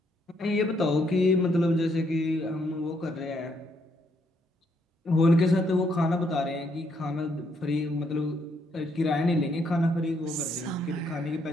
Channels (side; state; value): both; normal; correlation 0.73